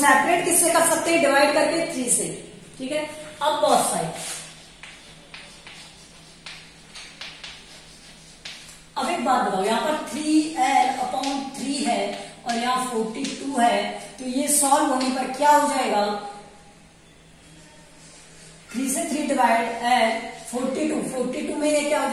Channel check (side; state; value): both; identical; correlation 1.00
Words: किससे कर सकते हैं? डिवाइड करके 3 से। ठीक है, अब बोथ साइड। अब एक बात बताओ, यहां पर 3l/3 है और यहाँ 42 है, तो ये सॉल्व होने पर क्या हो जाएगा? 3 से 3 डिवाइड l 42 में ये क्या हो